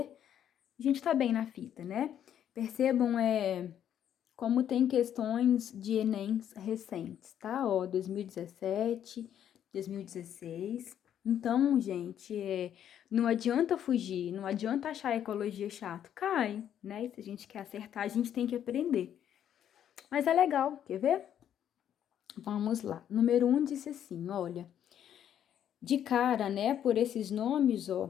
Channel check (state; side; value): quieter; right; 9.9 dB